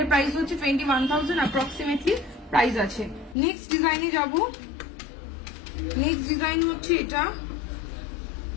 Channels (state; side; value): drops out; right; at 3.4 s